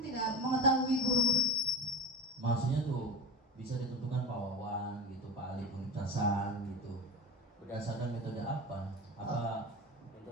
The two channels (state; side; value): normal; both; correlation 0.25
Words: mengetahui guru-guru. Maksudnya tuh bisa ditentukan Pak Wawan gitu, Pak Ali Pementasan gitu. Berdasarkan metode apa? Apa